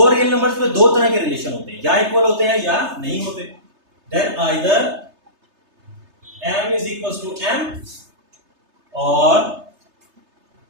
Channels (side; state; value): left; late; 3.3 ms